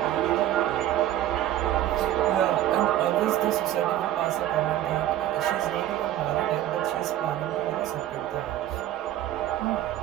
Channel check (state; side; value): quieter; left; 12.7 dB